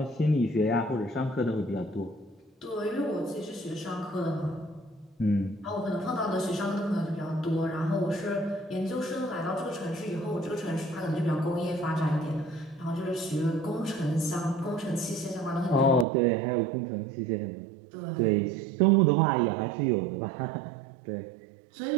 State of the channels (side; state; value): left; drops out; at 16.1 s